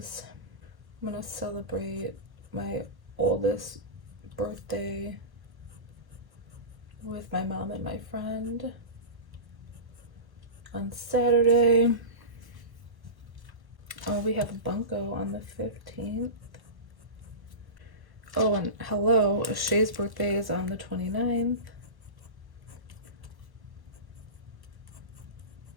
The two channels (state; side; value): late; left; 1.1 ms